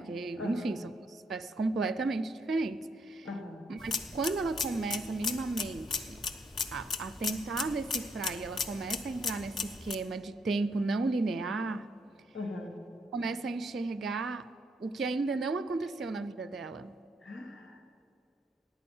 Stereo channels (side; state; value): both; normal; correlation 0.73